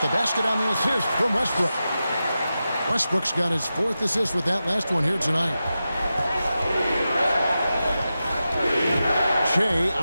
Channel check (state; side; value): inverted; both; correlation -0.92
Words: the basket on the assist from Westbrook. Westbrook's got his 4th assist with that last one here tonight. Che